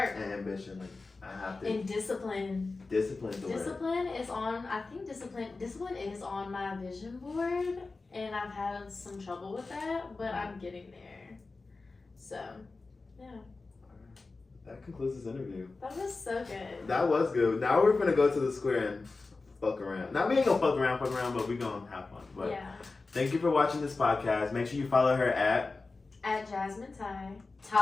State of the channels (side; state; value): right; quieter; 3.8 dB